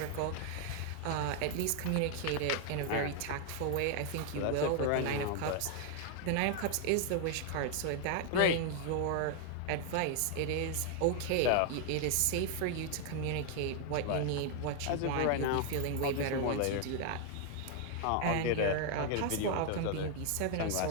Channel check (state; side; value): different; both; correlation 0.00